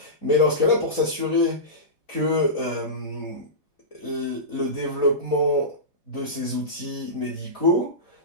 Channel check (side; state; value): right; late; 3.5 ms